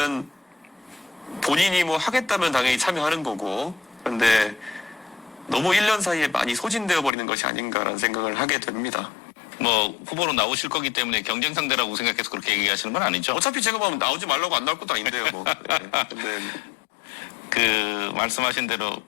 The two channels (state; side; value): drops out; right; at 7.1 s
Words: 본인이 뭐 하겠다면 당연히 참여하는 거고 그런데 너무 1년 사이에 많이 소진되어 버리는 것이 아닌가라는 생각을 하게 됩니다. 뭐 후보로 나오실 거기 때문에 경쟁 상대라고 생각해서 그렇게 얘기하시는 건 아니죠? 어차피 제가 보면 나오지 말라고 안 나올 것도 아닌데요, 뭐. 네. 근데 그 말씀하신 대로